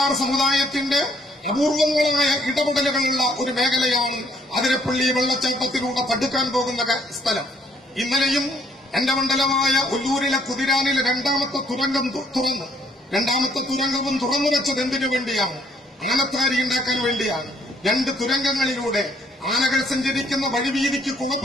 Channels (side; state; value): both; normal; correlation 0.66